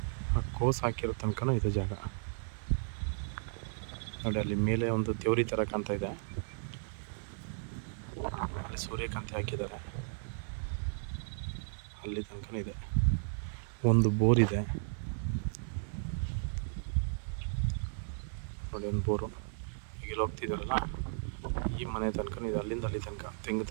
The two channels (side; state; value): left; silent; digital silence